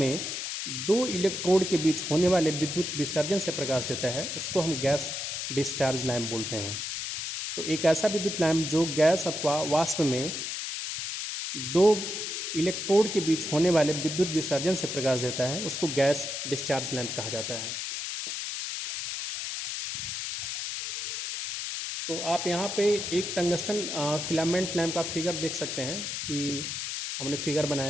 दो इलेक्ट्रोड के बीच होने वाले विद्युत विसर्जन से प्रकाश देता है उसको हम गैस डिस्चार्ज लैंप बोलते हैं। तो एक ऐसा विद्युत लैंप जो गैस अथवा वाष्प में दो इलेक्ट्रोड के बीच होने वाले विद्युत विसर्जन से प्रकाश देता है उसको गैस डिस्चार्ज लैंप कहा जाता है। तो आप यहाँ पे एक टंगस्टन फिलामेंट लैंप का फिगर देख सकते हैं कि हमने फिगर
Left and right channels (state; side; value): noise; left; hiss, 4 dB below the sound